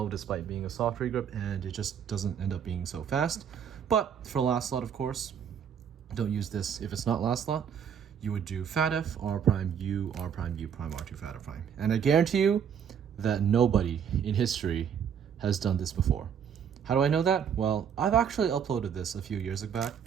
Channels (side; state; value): left; quieter; 8.0 dB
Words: despite being a soft regroup, and it just doesn't end up being so fast. But for last slot, of course, don't use this if it's not last slot. You would do fat F, R prime, U, R prime, U prime, R2, fat F prime. And I guarantee you that nobody in history has done this before. How do I know that? Well, I've actually uploaded this a few years back,